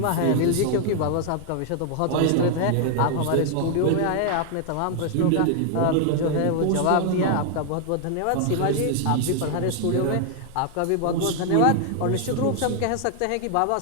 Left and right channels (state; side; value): different; both; correlation 0.00